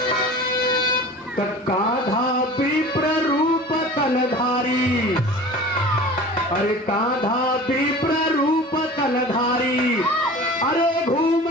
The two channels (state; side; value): normal; both; correlation 0.39